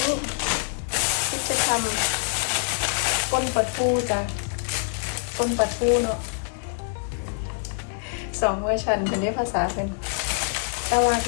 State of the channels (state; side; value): silent; right; digital silence